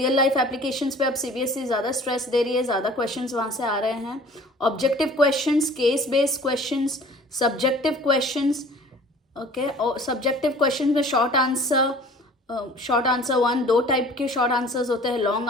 लाइफ एप्लीकेशंस पे अब CBSE ज़्यादा स्ट्रेस दे रही है, ज़्यादा क्वेश्चंस वहाँ से आ रहे हैं। Objective questions, case based questions, subjective questions. Okay, और सब्जेक्टिव क्वेश्चंस में शॉर्ट आंसर 1, 2 टाइप के शॉर्ट आंसर्स होते हैं, लॉन्ग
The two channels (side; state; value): both; normal; correlation 0.48